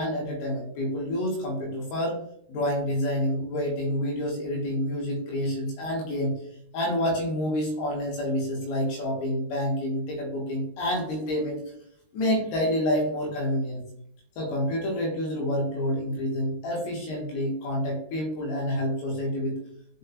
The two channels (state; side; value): late; right; 19 ms